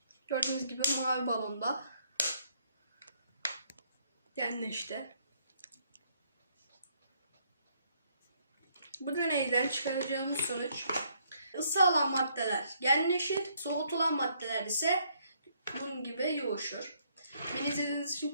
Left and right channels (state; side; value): inverted; both; correlation -0.69